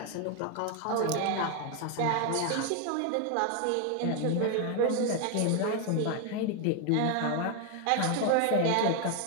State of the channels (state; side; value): different; both; correlation 0.01